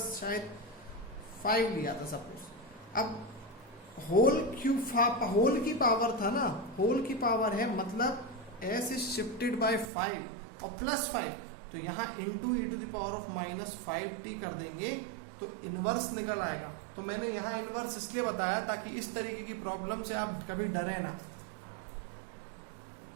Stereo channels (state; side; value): drops out; left; at 9.9 s